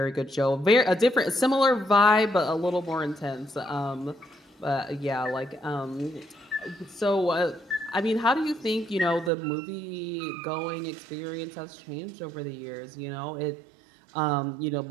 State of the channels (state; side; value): drops out; left; at 9.3 s